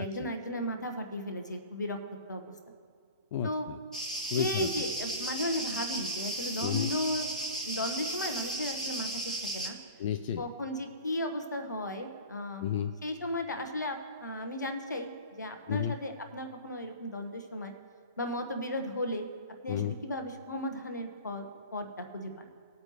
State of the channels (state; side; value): inverted; both; correlation -0.36